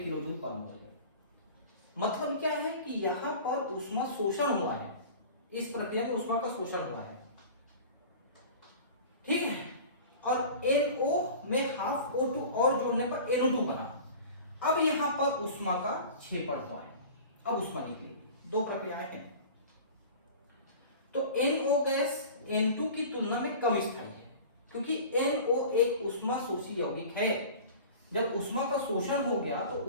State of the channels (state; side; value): inverted; both; correlation -0.39